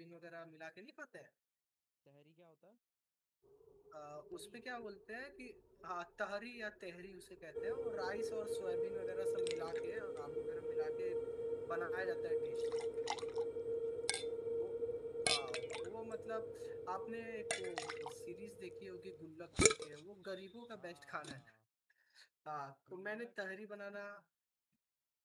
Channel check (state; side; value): identical; both; correlation 1.00